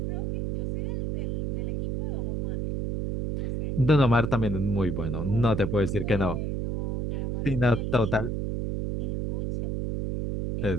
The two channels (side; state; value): right; noise; hum, 1 dB below the sound